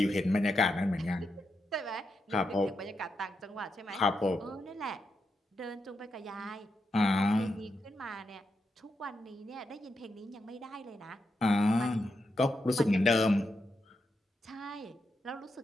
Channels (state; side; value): normal; both; correlation 0.84